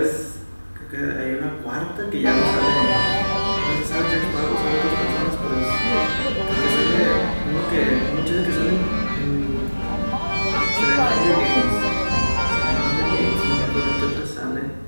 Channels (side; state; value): both; inverted; correlation -1.00